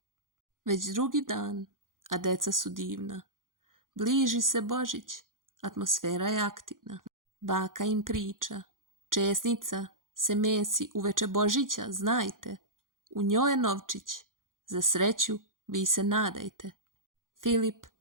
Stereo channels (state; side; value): late; left; 0.90 ms